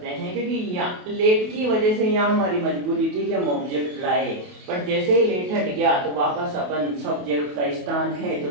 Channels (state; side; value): late; left; 28 ms